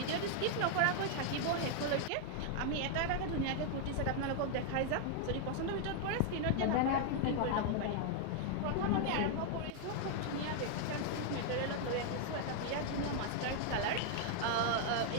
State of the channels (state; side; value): different; both; correlation 0.00